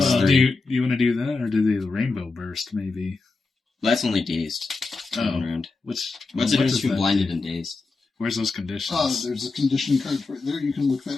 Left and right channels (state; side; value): quieter; right; 3.8 dB